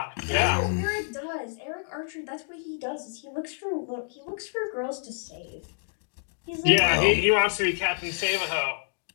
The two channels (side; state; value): right; silent; digital silence